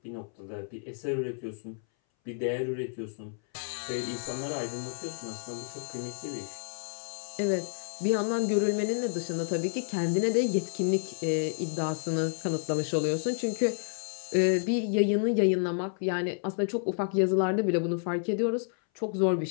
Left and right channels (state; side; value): silent; right; 58 dB below the other